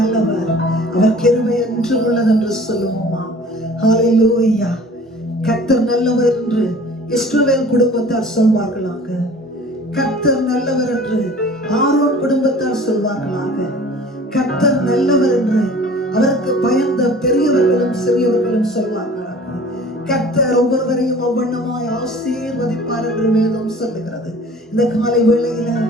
அவர் கிருபை என்றும் உள்ளது என்று சொல்லுவோமா? ஹல்லேலூயா. கர்த்தர் நல்லவர் என்று இஸ்ரவேல் குடும்பத்தார் சொல்வார்களாக. கர்த்தர் நல்லவர் என்று ஆரோன் குடும்பத்தார் சொல்வார்களாக. கர்த்தர் நல்லவர் என்று அவருக்கு பயந்த பெரியவர்களும் சிறியவர்களும் சொல்வார்களாக. கர்த்தர் ஒவ்வொருவரையும் அவ்வண்ணமாய் ஆசீர்வதிப்பார் என்று வேதம் சொல்லுகிறது. இந்த காலை வேளையில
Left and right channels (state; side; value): normal; both; correlation 0.46